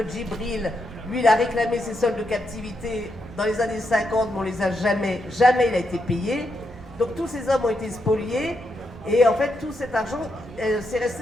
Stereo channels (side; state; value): both; normal; correlation 0.82